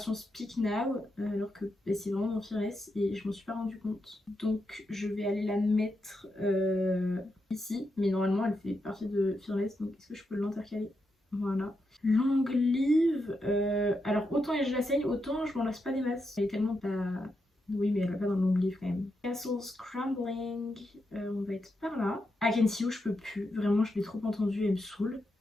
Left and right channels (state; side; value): normal; both; correlation 0.84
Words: Speak Now, alors que bah, c'est vraiment dans Fearless et je m'en suis pas rendu compte. Donc je vais aller la mettre ici, mais normalement elle fait partie de Fearless, donc est-ce que je peux l'intercaler? Voilà. Long Live, alors autant je la saigne, autant je m'en lasse pas des masses. Elle est tellement pas... Oui, mais elle va pas dans le long livre quand même. Castle Scrambling, on va être par là. I Can See You, je peux plus. Vraiment, je l'ai trop entendu, elle me saoule.